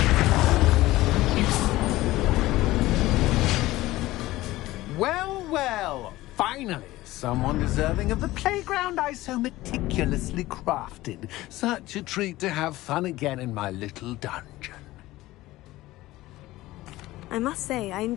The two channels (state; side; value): quieter; right; 17.4 dB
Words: Well, finally, someone deserving of the playground I so meticulously crafted. Such a treat to have fun again in my little dungeon. I must say, I